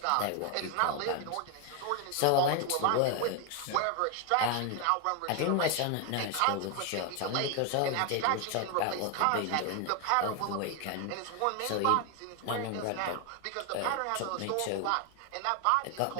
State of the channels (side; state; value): both; different; correlation 0.01